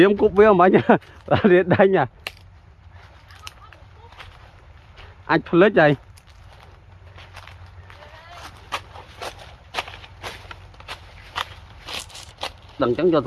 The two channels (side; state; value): both; identical; correlation 1.00